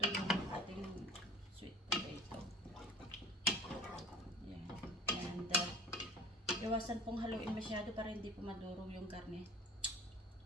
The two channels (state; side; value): normal; both; correlation 0.45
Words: yung ating sweet potato. Yan. And iwasan pong haluin masyado para hindi po madurog yung karne.